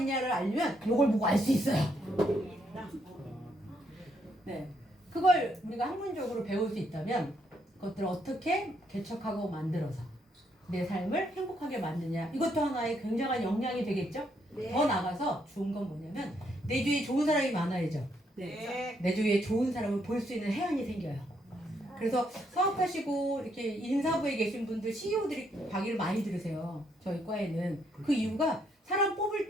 알면 이걸 보고 알 수 있어요. 네, 그걸 우리가 학문적으로 배울 수 있다면 그것들을 어떻게 개척하고 만들어서 내 삶을 행복하게 만드냐, 이것도 하나의 굉장한 역량이 되겠죠? 네. 더 나가서 좋은 건 뭐냐면 내 주위에 좋은 사람이 많아야죠. 네. 내 주위에 좋은 사람을 볼 수 있는 해안이 생겨요. 그래서 사업하시고 이렇게 인사부에 계신 분들 CEO들이 강의를 많이 들으세요. 저희 과에는. 그 이유가 사람 뽑을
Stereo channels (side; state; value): both; normal; correlation 0.74